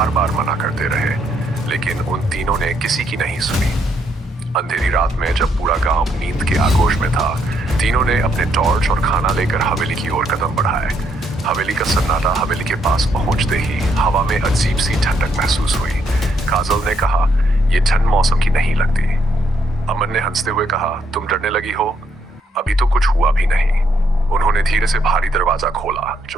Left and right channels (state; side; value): normal; both; correlation 0.73